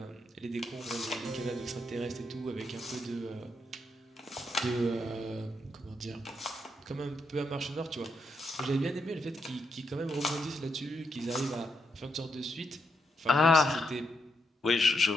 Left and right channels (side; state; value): both; normal; correlation 0.80